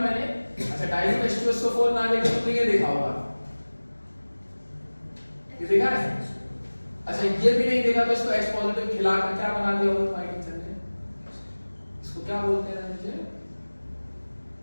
अच्छा, डाइल्यूट H2SO4 ना लेके तुमने ये देखा होगा, ये देखा है? अच्छा, ये भी नहीं देखा तो इसको H पॉजिटिव खिलाकर क्या बना दिया होगा तुम्हारे टीचर ने? इसको क्या बोलते हैं रणविजय?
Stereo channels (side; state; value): both; inverted; correlation -1.00